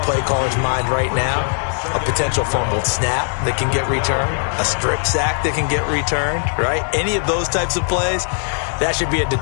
play caller's mind right now, a potential fumbled snap that can get returned, a strip sack that can get returned, right? Any of those types of plays, that should be a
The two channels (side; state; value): right; silent; 58 dB below the other